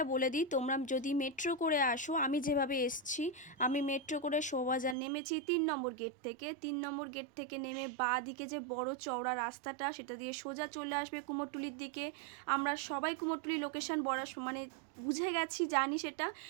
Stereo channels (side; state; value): left; drops out; at 5.0 s